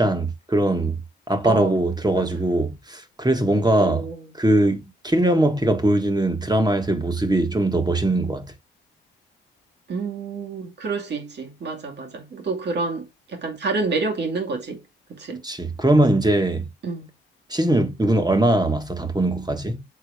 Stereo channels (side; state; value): both; normal; correlation 0.76